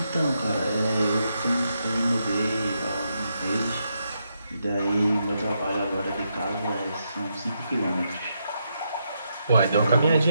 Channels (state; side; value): inverted; both; correlation -0.81